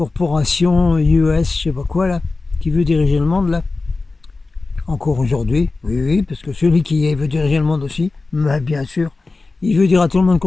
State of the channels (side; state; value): right; quieter; 3.6 dB